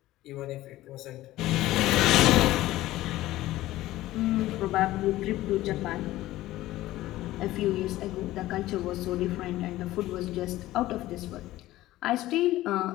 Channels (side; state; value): right; quieter; 16.1 dB